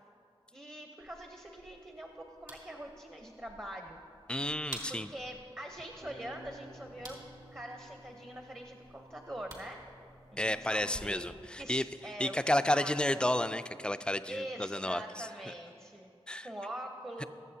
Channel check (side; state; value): both; normal; correlation 0.80